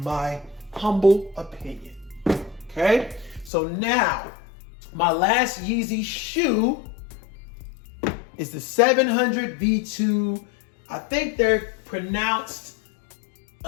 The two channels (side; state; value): right; drops out; at 3.5 s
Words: my humble opinion. Okay. So now my last Yeezy shoe is the 700 V2. I think they're pronounced